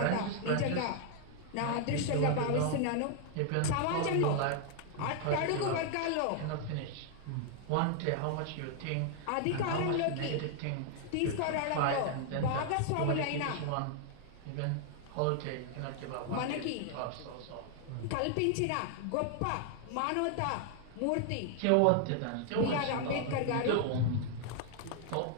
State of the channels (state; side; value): different; both; correlation 0.00